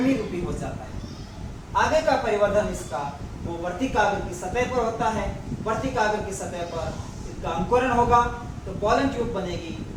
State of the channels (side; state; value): both; identical; correlation 1.00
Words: रूपी हो जाता है। आगे का परिवर्तन इसका वो वर्तिकाग्र की सतह पर होता है। वर्तिकाग्र की सतह पर इसका अंकुरण होगा तो पॉलन ट्यूब बनेगी,